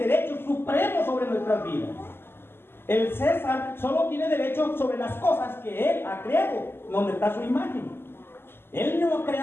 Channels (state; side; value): late; right; 0.11 ms